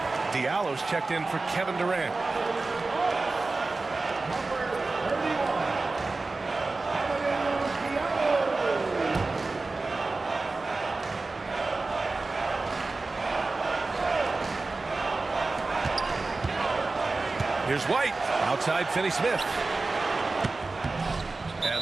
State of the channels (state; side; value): quieter; left; 3.6 dB